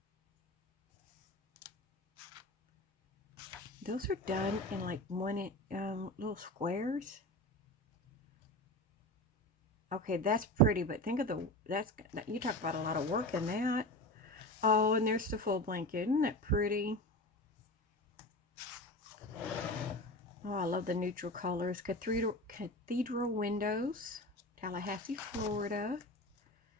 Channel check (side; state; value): both; normal; correlation 0.28